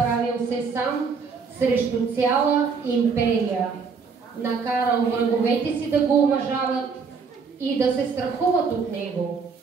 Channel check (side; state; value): left; quieter; 5.3 dB